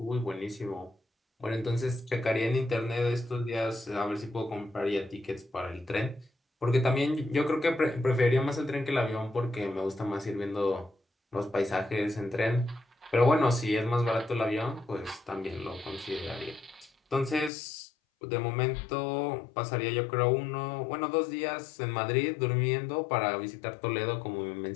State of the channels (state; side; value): drops out; right; at 17.5 s